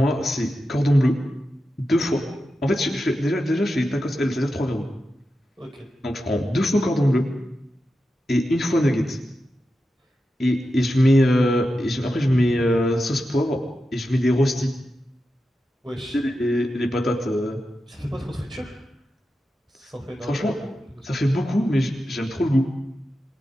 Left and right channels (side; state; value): both; normal; correlation 0.90